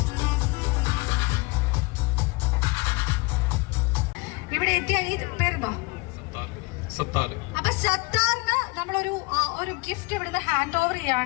ഇവിടെ എത്തിയ ഈ പേരെന്താ? അപ്പൊ സത്താറിന് നമ്മളൊരു ഗിഫ്റ്റ് ഇവിടുന്ന് ഹാൻഡ് ഓവർ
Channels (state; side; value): quieter; right; 25.7 dB